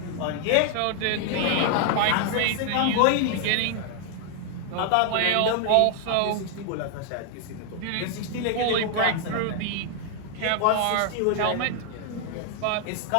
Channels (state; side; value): different; both; correlation 0.00